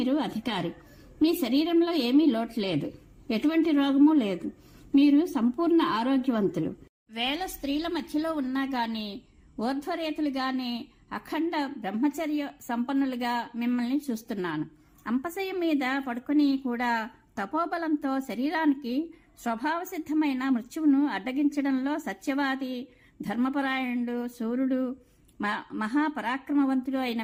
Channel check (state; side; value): identical; both; correlation 1.00